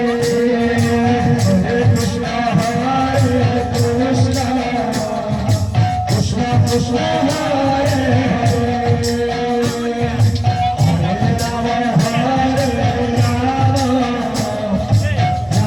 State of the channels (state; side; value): noise; left; hum, 24 dB below the sound